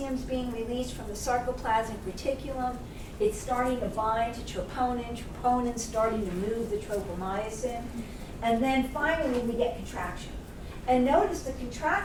being released from the sarcoplasmic reticulum. It's starting to bind to troponin. Troponin's starting to move the tropomyosin. And then finally, we get contraction. And notice the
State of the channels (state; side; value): identical; both; correlation 1.00